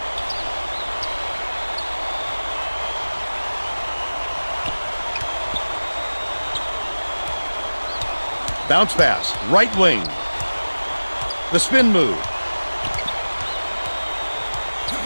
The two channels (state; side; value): inverted; both; correlation -1.00